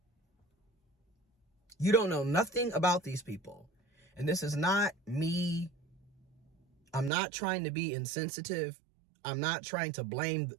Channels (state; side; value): drops out; left; at 7.1 s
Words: You don't know nothing about these people. And this is not me. I'm not trying to be insensitive. I'm not trying to blame